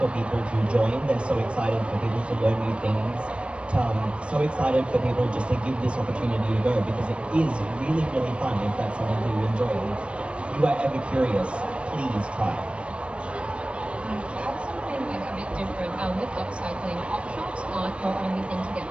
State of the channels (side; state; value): left; late; 0.059 ms